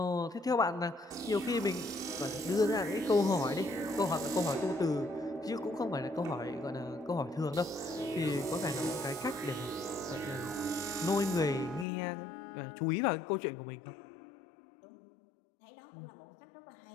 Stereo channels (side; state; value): right; drops out; at 11.9 s